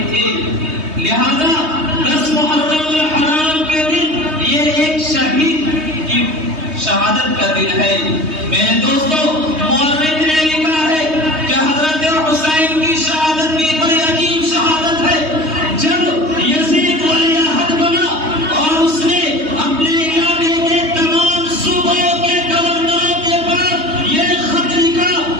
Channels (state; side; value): late; left; 3.2 ms